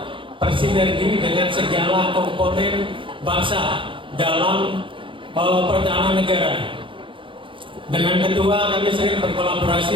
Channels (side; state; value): left; late; 0.25 ms